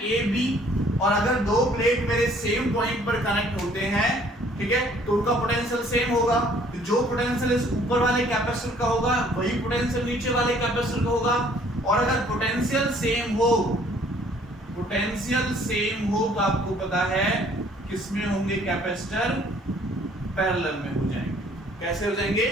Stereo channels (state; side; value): normal; both; correlation 0.59